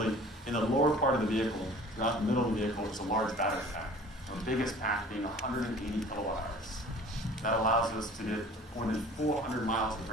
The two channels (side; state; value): both; normal; correlation 0.46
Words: in the lower part of the vehicle, throughout the middle of the vehicle, is a large battery pack. Our biggest pack being 180 kilowatt hours. That allows us to get more than 400 miles of